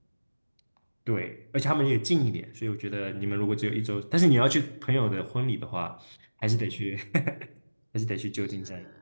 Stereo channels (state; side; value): inverted; both; correlation -1.00